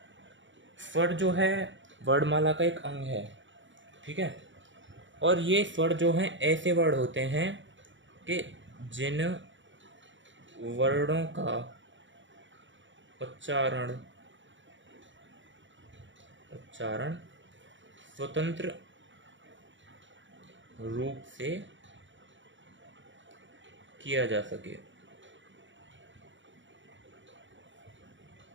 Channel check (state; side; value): late; left; 0.55 ms